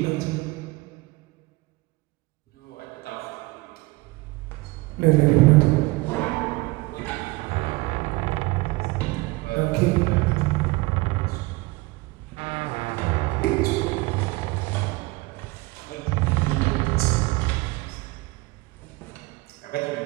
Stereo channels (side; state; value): left; quieter; 23.1 dB